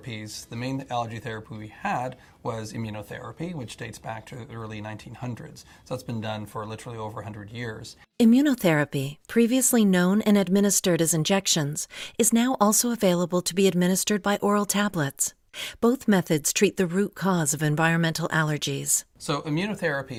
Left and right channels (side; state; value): both; identical; correlation 1.00